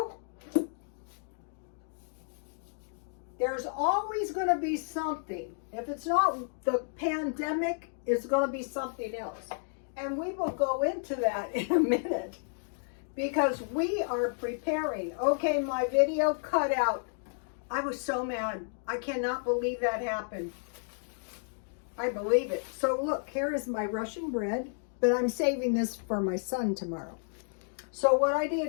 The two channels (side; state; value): right; silent; digital silence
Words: There's always going to be something. If it's not the pandemic, it's going to be something else. And we will go into that in a minute because we are preparing. Okay, my video cut out. I was so mad. I cannot believe that happened. I believe it. So look, here is my Russian bread, but I'm saving this for my son tomorrow. So what I